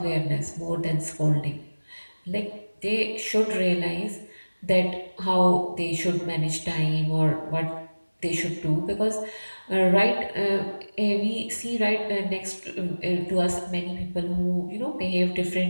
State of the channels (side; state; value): both; inverted; correlation -1.00